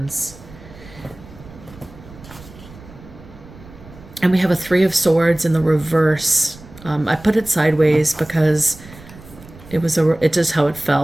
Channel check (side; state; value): right; noise; rumble, 20 dB below the sound